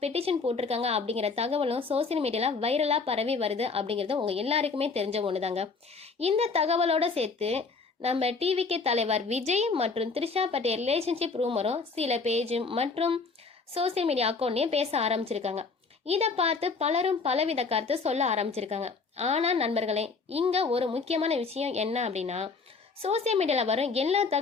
பெட்டிஷன் போட்டிருக்காங்க அப்படிங்கிற தகவலும் சோசியல் மீடியால வைரலா பரவி வருது அப்படிங்கிறது உங்க எல்லாருக்குமே தெரிஞ்ச ஒண்ணுதாங்க. இந்த தகவலோட சேர்த்து நம்ம டிவிகே தலைவர் விஜய் மற்றும் த்ரிஷா பற்றிய ரிலேஷன்ஷிப் ரூமரும் சில பேஜ் மற்றும் சோசியல் மீடியா அக்கௌண்ட்லயும் பேச ஆரம்பிச்சிருக்காங்க. இதை பார்த்து பலரும் பலவித கருத்து சொல்ல ஆரம்பிச்சிருக்காங்க. ஆனா நண்பர்களே, இங்க ஒரு முக்கியமான விஷயம் என்ன அப்படின்னா, சோசியல் மீடியால வரும் எல்லா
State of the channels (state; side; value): quieter; right; 4.5 dB